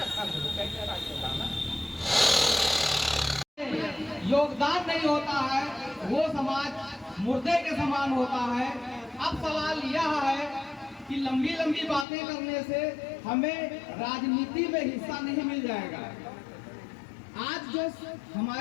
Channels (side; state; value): right; drops out; at 12.1 s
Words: कैसे राजस्थान? योगदान नहीं होता है, वो समाज मुर्दे के समान होता है। अब सवाल यह है कि लंबी लंबी बातें करने से हमें राजनीति में हिस्सा नहीं मिल जाएगा। आज जो